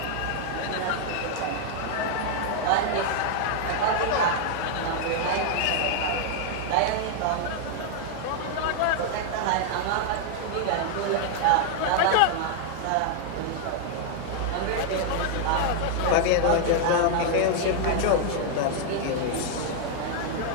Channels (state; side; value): different; both; correlation 0.00